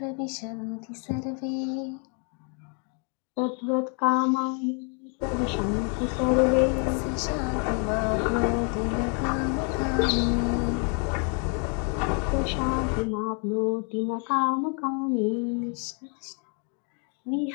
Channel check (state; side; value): quieter; right; 39.5 dB